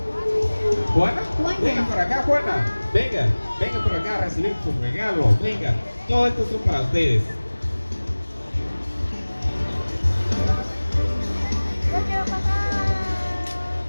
¿Juana? Juana. Venga por acá, Juana. Venga por acá a recibir su regalo. Venga, todo esto son para ustedes.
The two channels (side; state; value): both; inverted; correlation -1.00